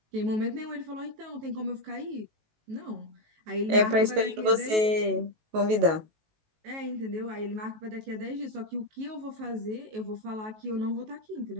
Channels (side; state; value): left; late; 19 ms